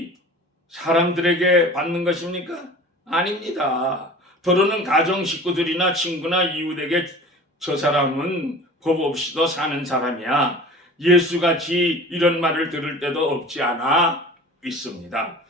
사람들에게 받는 것입니까? 아닙니다. 더러는 가정 식구들이나 친구나 이웃에게 저 사람은 법 없이도 사는 사람이야. 예수같이 이런 말을 들을 때도 없지 않아 있습니다.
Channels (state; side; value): normal; both; correlation 0.41